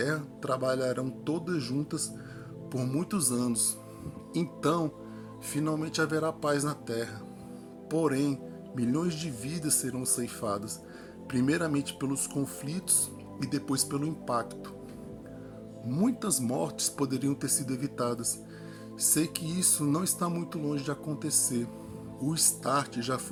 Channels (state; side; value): identical; both; correlation 1.00